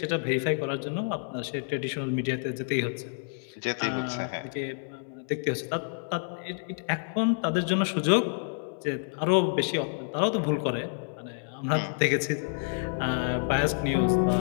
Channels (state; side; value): silent; right; 59 dB below the other